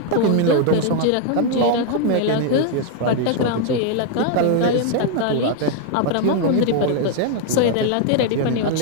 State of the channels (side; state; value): both; different; correlation 0.00